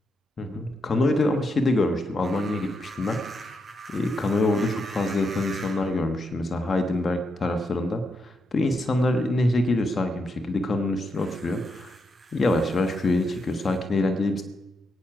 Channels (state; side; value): normal; both; correlation 0.82